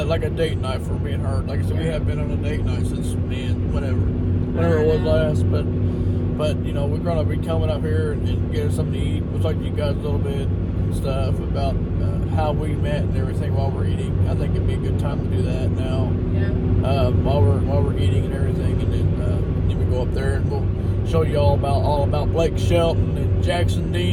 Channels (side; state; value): both; identical; correlation 1.00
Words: a date night for me and her. Like I said, we have been on a date night since whenever it was last. But we're gonna be coming up here and getting something to eat. We'll talk to you guys a little bit and stuff about how we met and everything while we're eating. I think it'd be a good time to do that now. Yeah. While we're eating and everything, and then we go up there and we'll show you all about Blake Shelton and Jackson